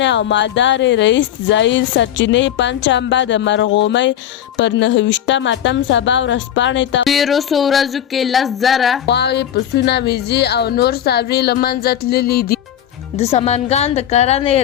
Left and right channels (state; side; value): quieter; right; 10.7 dB